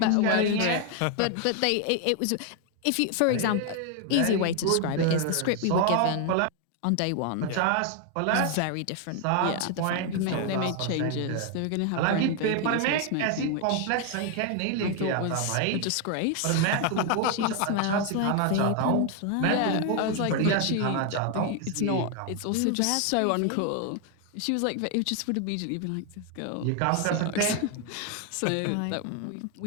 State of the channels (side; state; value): both; different; correlation 0.01